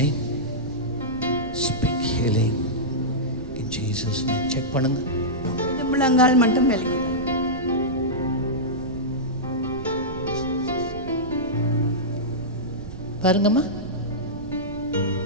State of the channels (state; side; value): noise; right; rumble, 13 dB below the sound